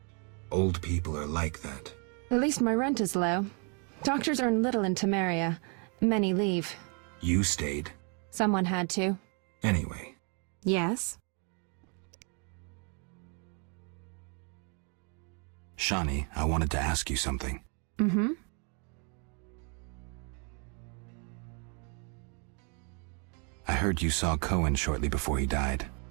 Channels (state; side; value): quieter; left; 37.0 dB